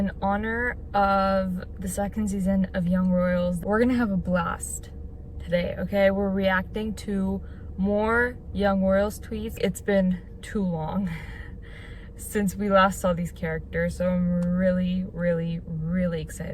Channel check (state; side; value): identical; both; correlation 1.00